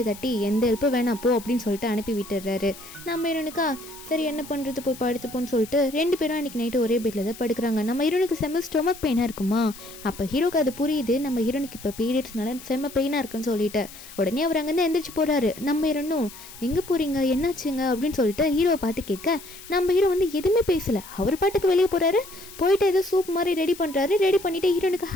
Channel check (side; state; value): left; noise; hiss, 17 dB below the sound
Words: தட்டி எந்த ஹெல்ப்பும் வேணாம் போ அப்படின்னு சொல்லிட்டு அனுப்பி விட்டுறாரு. நம்ம ஹீரோனுக்கா சரி என்ன பண்ணுறது போய் படுத்துப்போன்னு சொல்லிட்டு ரெண்டு பேரும் அன்றைக்கி நைட்டு ஒரே பெட்டில் தான் படுக்கிறாங்க. நம்ம ஹீரோனுக்கு செம்ம ஸ்டொமக் பெயினாக இருக்குமா. அப்போ ஹீரோக்கு அது புரியுது, நம்ம ஹீரோனுக்கு இப்போ பீரியட்ஸ்னால செம்ம பெயினாக இருக்குன்னு சொல்லிட்டு உடனே அவர் அங்கேருந்து எந்திரிச்சு போகிறாரு. நம்ம ஹீரோனும் எங்கே போகிறீங்க என்னாச்சுங்க அப்படின்னு சொல்லிட்டு ஹீரோவை பார்த்து கேட்க நம்ம ஹீரோ வந்து எதுவுமே பேசலை, அவர் பாட்டுக்கு வெளியே போகிறாரு. போயிட்டு ஏதோ சூப் சோப் மாதிரி ரெடி பண்ணுறாரு. ரெடி பண்ணிவிட்டு ஹீரோனுக்கு